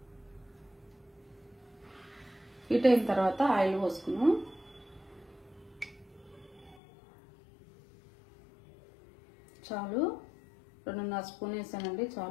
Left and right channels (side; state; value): right; drops out; at 6.8 s